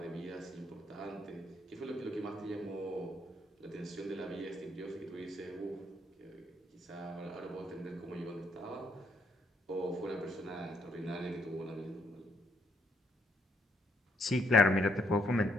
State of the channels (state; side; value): normal; both; correlation 0.72